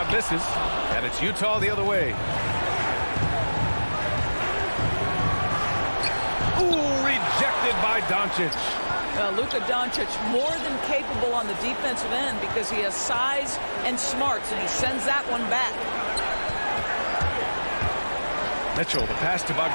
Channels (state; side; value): inverted; both; correlation -1.00